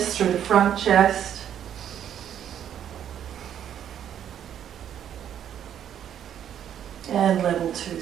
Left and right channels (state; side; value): quieter; left; 9.7 dB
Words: through the front chest. And level 2,